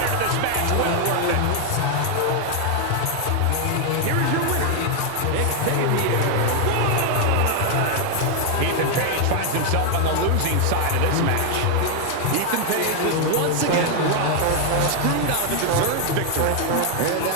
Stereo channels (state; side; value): different; both; correlation 0.00